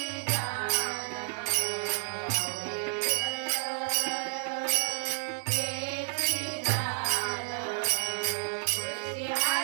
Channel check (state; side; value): silent; left; 57 dB below the other